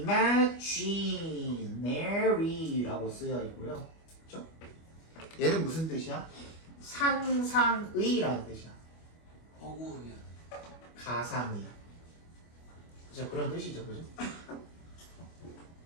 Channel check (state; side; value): late; right; 25 ms